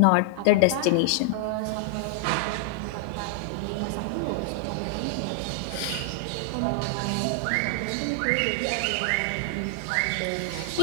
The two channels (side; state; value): both; different; correlation 0.00